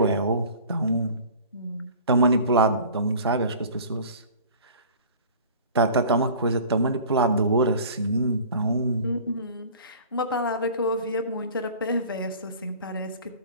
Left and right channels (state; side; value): inverted; both; correlation -0.43